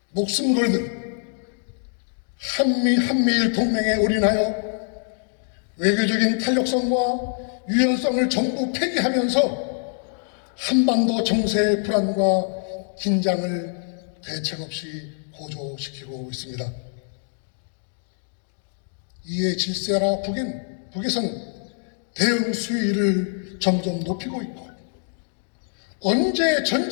목숨 걸든 한미일 동맹에 올인하여 외교적인 탄력성과 유연성을 전부 폐기하면서 한반도 정세의 불안과 긴장을 대책 없이 고조시키고 있습니다. 이에 질세라 북에서는 대응 수위를 점점 높이고 있고 언제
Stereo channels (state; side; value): silent; right; 62 dB below the other